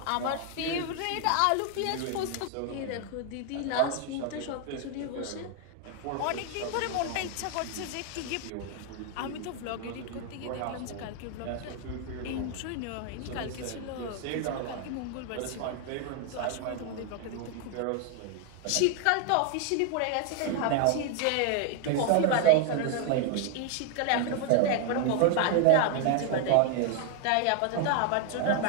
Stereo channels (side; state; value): both; different; correlation 0.00